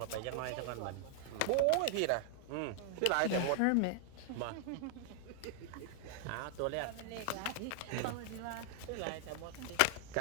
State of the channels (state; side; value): different; both; correlation 0.00